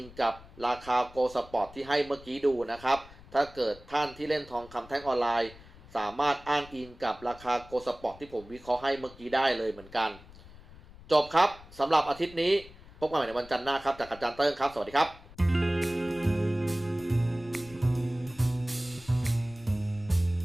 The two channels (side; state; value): left; noise; rumble, 20 dB below the sound